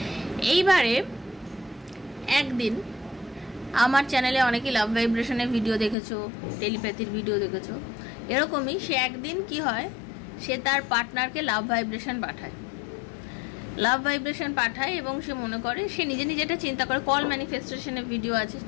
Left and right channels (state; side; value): drops out; right; at 6.0 s